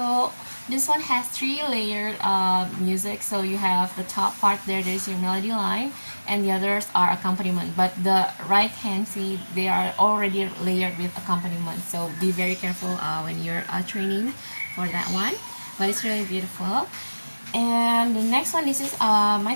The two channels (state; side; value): inverted; both; correlation -1.00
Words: this one has three layered music. So you have the top part there's your melody line, and the others are accompaniment. But the right hand, see, they are already layered with accompaniment. So be very careful when you're training for that one. But it's really beautiful. And the next one, this is